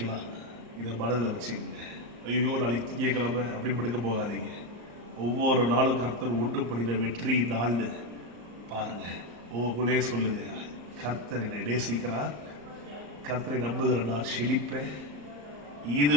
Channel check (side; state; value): left; late; 34 ms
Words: இதை மனதில் வச்சுக்கோங்க. ஐயோ நாளைக்கு திங்கக்கிழமை அப்படின்னு படுக்க போகாதீங்க. ஒவ்வொரு நாளும் கர்த்தர் ஒன்று பண்ணின வெற்றி நாள்னு பாருங்க. உங்களுக்குள்ளே சொல்லுங்க, கர்த்தர் என்னை நேசிக்கிறார், கர்த்தரை நம்புகிற நான் செழிப்பேன். இது